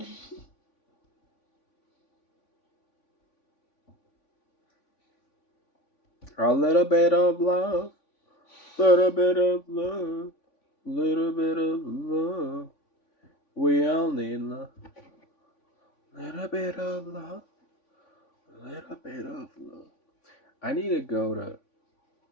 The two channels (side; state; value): right; late; 3.5 ms